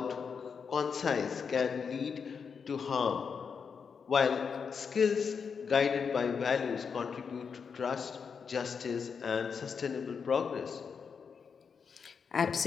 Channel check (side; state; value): right; quieter; 6.1 dB